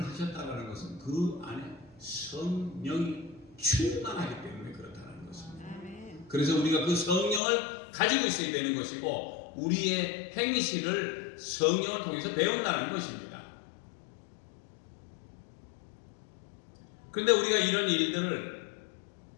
하셨다는 것은 그 안에 성령이 충만하기 때문에 그렇다는 것입니다. 아멘. 그래서 우리가 그 성령을 가지고 있어야 되는 것이고 우리의 행실을 성령을 통해서 배운다는 것입니다. 그런데 우리가 이런 일들을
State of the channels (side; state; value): right; drops out; at 7.4 s